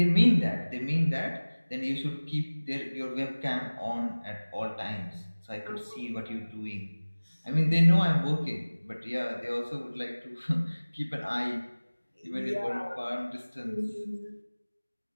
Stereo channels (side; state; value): both; inverted; correlation -1.00